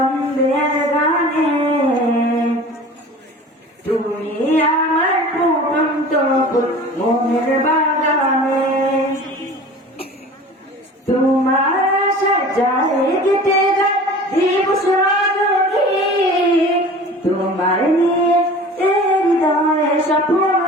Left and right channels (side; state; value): both; normal; correlation 0.41